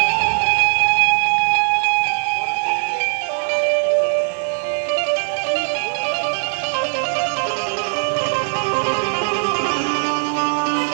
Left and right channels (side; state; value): left; silent; digital silence